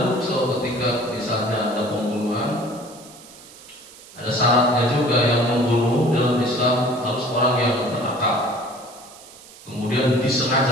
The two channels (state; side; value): noise; right; hiss, 20 dB below the sound